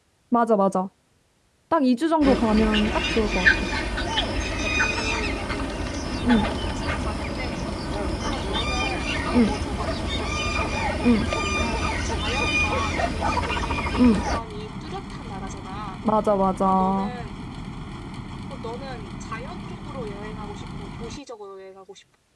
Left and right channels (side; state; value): both; identical; correlation 1.00